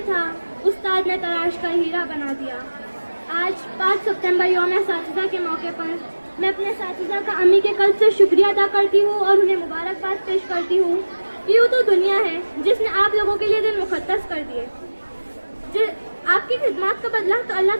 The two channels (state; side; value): inverted; both; correlation -1.00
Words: تھا، استاد نے تراش کر ہیرا بنا دیا۔ آج 5 ستمبر یوم اساتذہ کے موقع پر میں اپنے اساتذہ کا امی کے قلب سے شکریہ ادا کرتی ہوں اور انہیں مبارکباد پیش کرتی ہوں۔ یوں تو دنیا ہے جس نے آپ لوگوں کے لیے دن مقدس کر دیے، آپ کی خدمات کا بدلہ تو اللہ